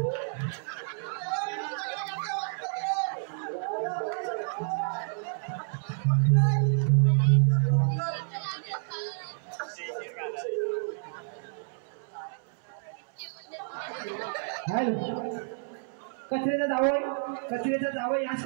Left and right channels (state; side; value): silent; left; 58 dB below the other